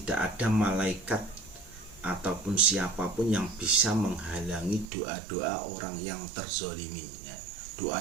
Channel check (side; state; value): left; drops out; at 4.9 s